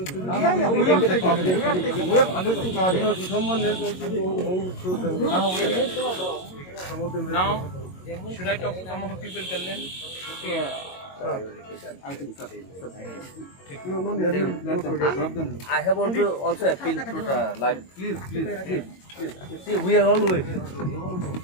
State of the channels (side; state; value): right; late; 22 ms